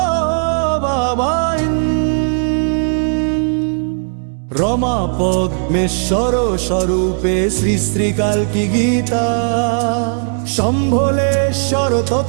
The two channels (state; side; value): silent; left; 69 dB below the other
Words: বাবাই। রমা পদ্মেশ্বর স্বরূপে শ্রী শ্রী কালকি গীতা। শম্ভলেশ্বর